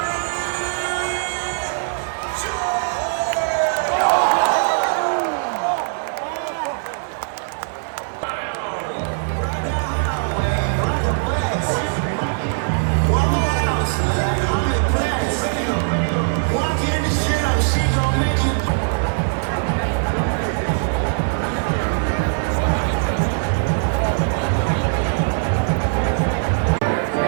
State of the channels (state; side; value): silent; left; digital silence